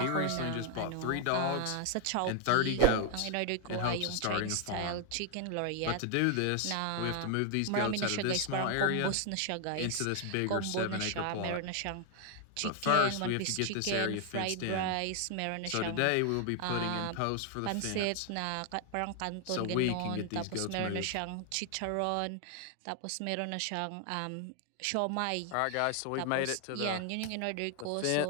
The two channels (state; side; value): different; both; correlation 0.00